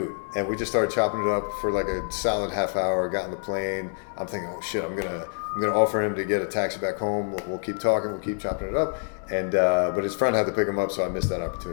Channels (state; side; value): silent; right; digital silence